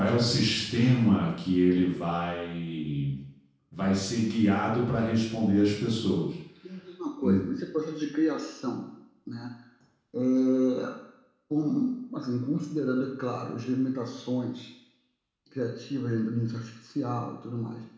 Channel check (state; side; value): identical; both; correlation 1.00